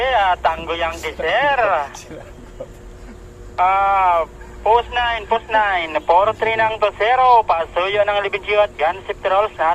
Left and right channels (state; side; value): identical; both; correlation 1.00